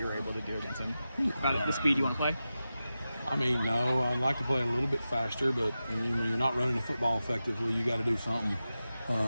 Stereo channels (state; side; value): inverted; both; correlation -0.93